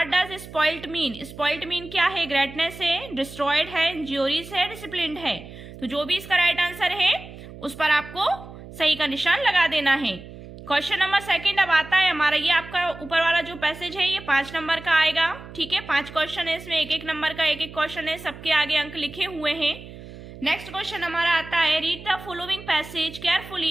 does spoiled mean. Spoiled mean क्या है, ग्रेटनेस है, डिस्ट्रॉयड है, इंज्यूरीज है, डिसिप्लिन्ड है। तो जो भी इसका राइट आंसर है उस पर आपको सही का निशान लगा देना है। क्वेश्चन नंबर सेकंड अब आता है हमारा, ये आपका ऊपर वाला जो पैसेज है ये 5 नंबर का आएगा, ठीक है। 5 क्वेश्चन है इसमें, एक एक नंबर का एक एक क्वेश्चन है, सबके आगे अंक लिखे हुए हैं। नेक्स्ट क्वेश्चन हमारा आता है, read the following passage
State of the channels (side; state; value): right; noise; hum, 15 dB below the sound